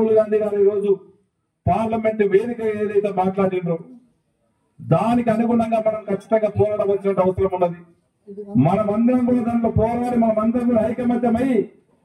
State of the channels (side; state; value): both; identical; correlation 1.00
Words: గాంధీ గారు ఈ రోజు పార్లమెంట్ వేదిక ఏదైతే మాట్లాడిండ్రో దానికి అనుగుణంగా మనం ఖచ్చితంగా పోరాడవలసిన అవసరం ఉన్నది. మనమందరం కూడా దాంట్లో పోరాడి మనమందరం కూడా ఐకమత్యమై